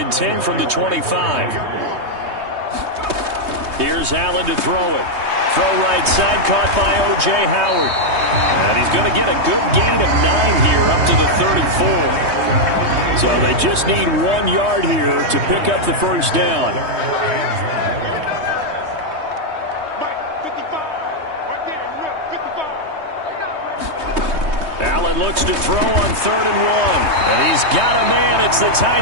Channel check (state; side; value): late; left; 3.2 ms